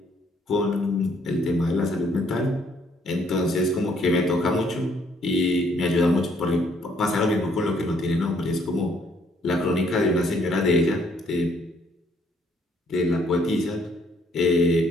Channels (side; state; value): both; normal; correlation 0.67